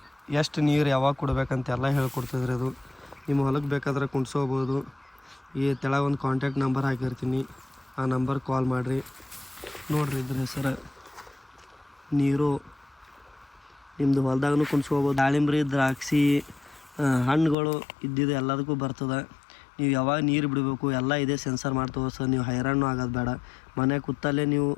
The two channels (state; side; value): drops out; right; at 17.6 s